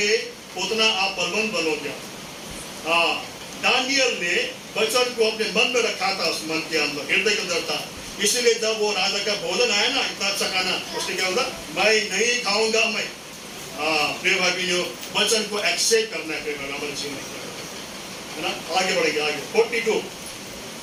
उतना आप बलवंत बनोगे। दानियल ने वचन को अपने मन में रखा था, उस मन के अंदर, हृदय के अंदर था। इसलिए जब वो राजा का भोजन आया ना, इतना अच्छा खाना, उसने क्या होगा, मैं नहीं खाऊंगा मैं। प्रिय भाई बहनों, वचन को एक्सेप्ट करना है प्रिय भाई, हमारे जीवन है ना। आगे बढ़ेंगे आगे 42।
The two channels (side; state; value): both; identical; correlation 1.00